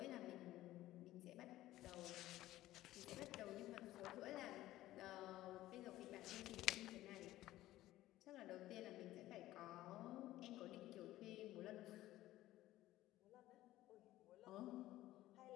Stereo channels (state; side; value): quieter; right; 15.4 dB